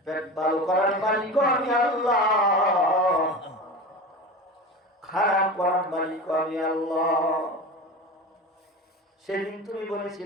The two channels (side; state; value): both; normal; correlation 0.30